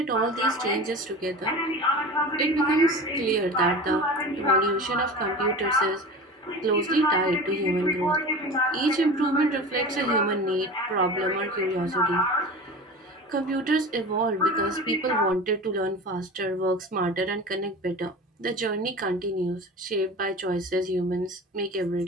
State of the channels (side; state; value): both; normal; correlation 0.34